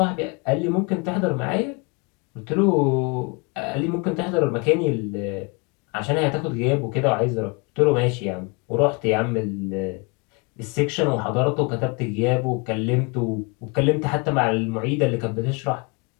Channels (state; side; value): quieter; right; 30.4 dB